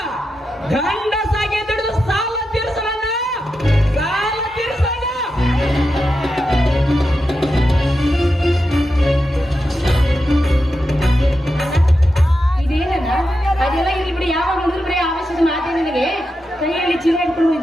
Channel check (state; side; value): normal; both; correlation 0.88